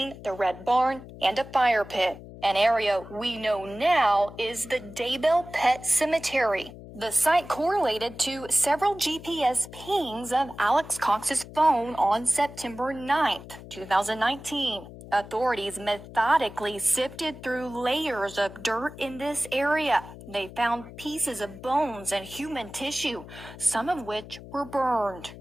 the red barn and a fire pit. An area we know now is the Daybell Pet Cemetery. The site correlated to several GPS pings of Alex Cox's phone on September 9th, 2019. Authorities methodically sifted through layers of dirt in this area. They found pieces of bones and human tissue, some of which were burned.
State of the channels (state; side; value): noise; left; hum, 15 dB below the sound